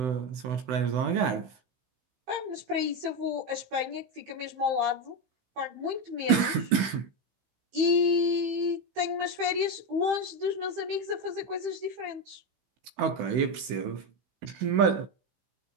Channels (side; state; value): left; late; 16 ms